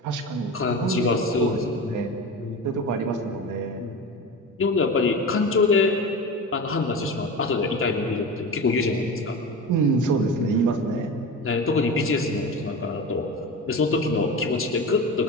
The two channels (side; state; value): both; normal; correlation 0.28